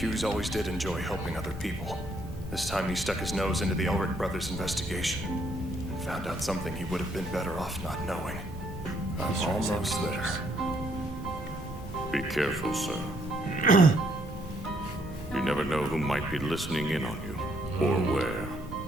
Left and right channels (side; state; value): both; normal; correlation 0.70